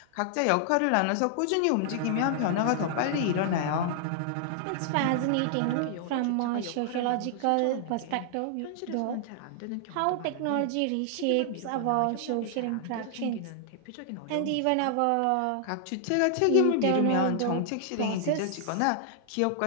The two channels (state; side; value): different; both; correlation -0.01